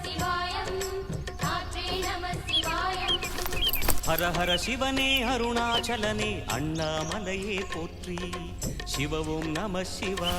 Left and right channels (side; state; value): both; identical; correlation 1.00